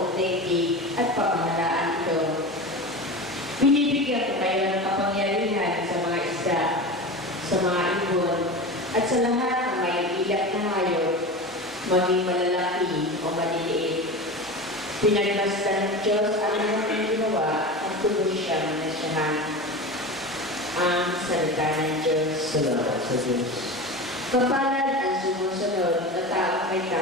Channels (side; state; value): both; normal; correlation 0.28